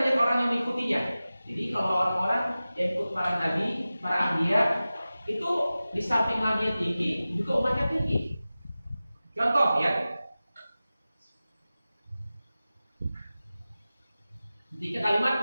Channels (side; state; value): both; inverted; correlation -0.96